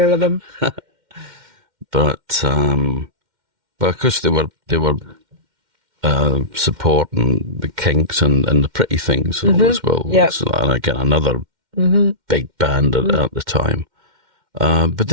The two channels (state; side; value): late; left; 2.1 ms